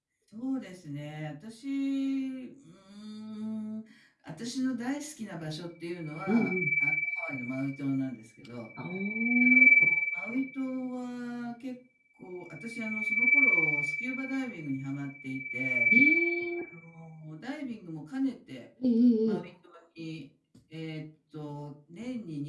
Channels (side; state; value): both; identical; correlation 1.00